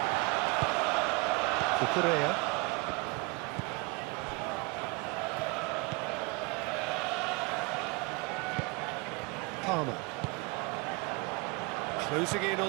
Cucurella. Palmer. Closing in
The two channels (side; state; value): left; quieter; 27.6 dB